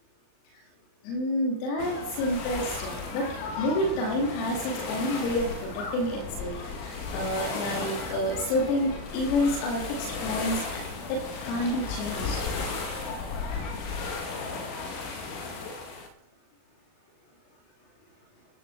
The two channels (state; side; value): late; right; 39 ms